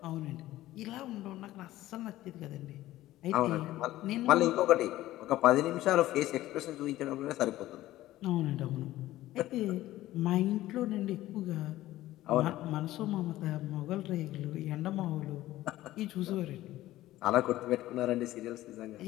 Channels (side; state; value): right; quieter; 15.5 dB